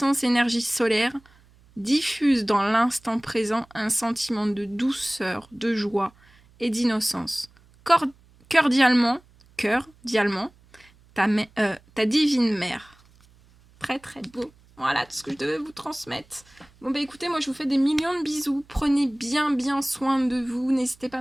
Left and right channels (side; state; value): right; noise; hum, 29 dB below the sound